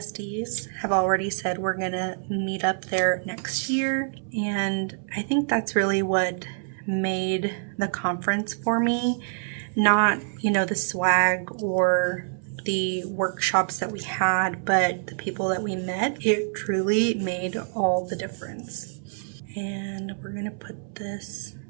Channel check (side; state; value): left; silent; 61 dB below the other